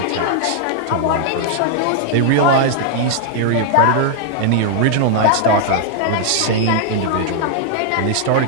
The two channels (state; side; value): different; both; correlation 0.00